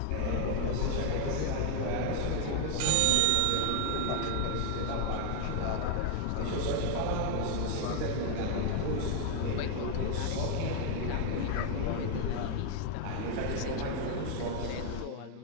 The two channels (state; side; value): different; both; correlation 0.00